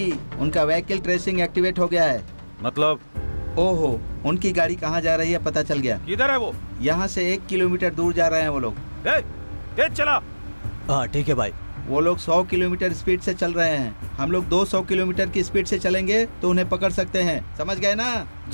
उनका व्हीकल ट्रेसिंग एक्टिवेट हो गया है। मतलब? ओहो, उनकी गाड़ी कहाँ जा रही है पता चल गया। किधर है वो? यहाँ से 1 किलोमीटर दूर जा रहे हैं वो लोग। तेज चला। हाँ ठीक है भाई। वो लोग 100 किलोमीटर स्पीड से चल रहे हैं, हम लोग 200 किलोमीटर की स्पीड से चलेंगे तो उन्हें पकड़ सकते हैं, समझ गए ना?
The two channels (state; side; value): inverted; both; correlation -1.00